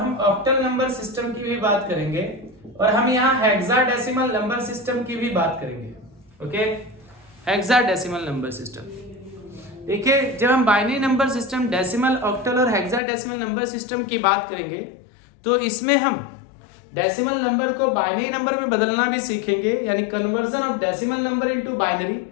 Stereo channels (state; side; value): drops out; right; at 13.0 s